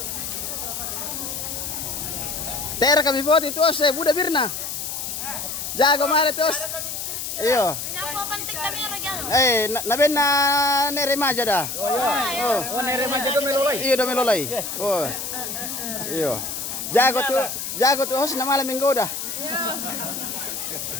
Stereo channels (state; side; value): noise; left; hiss, 5 dB below the sound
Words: Ter kami buat itu Buddha Birna. Jago mare terus. Iyo. Naben na neremaja dah. Oh, nere mah jago melolai. Iyo do melolai. Oh. Iyo. Jago tuh host na malam minggu dah.